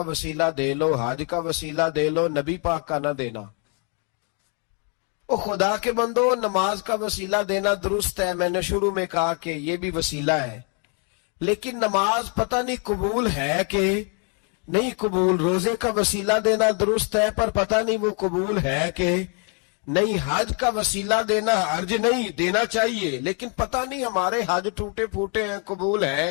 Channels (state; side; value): quieter; right; 38.5 dB